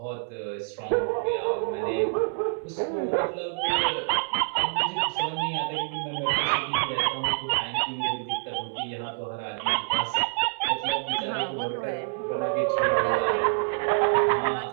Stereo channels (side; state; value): left; silent; 59 dB below the other